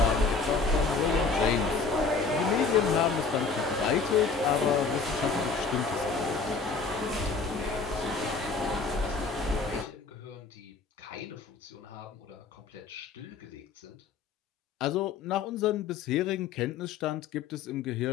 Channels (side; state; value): right; quieter; 4.6 dB